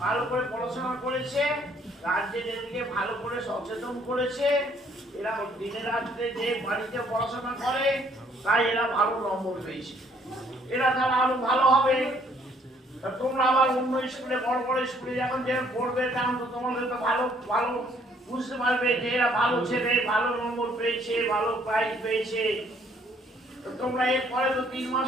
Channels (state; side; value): normal; both; correlation 0.64